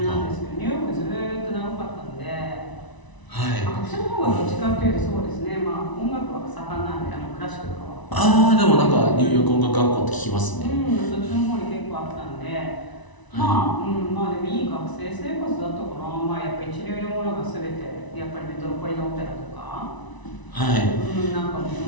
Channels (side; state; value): right; late; 1.0 ms